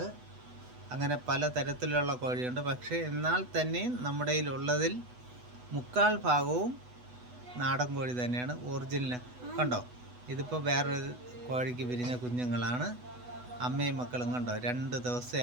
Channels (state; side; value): late; left; 8.1 ms